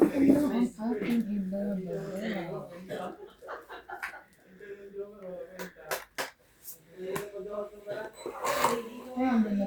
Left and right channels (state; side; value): identical; both; correlation 1.00